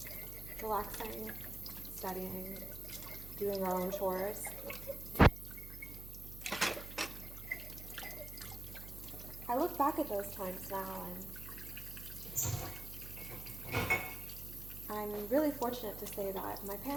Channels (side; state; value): right; noise; hum, 12 dB below the sound